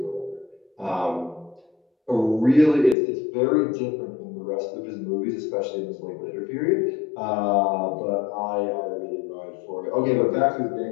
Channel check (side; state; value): right; drops out; at 3.0 s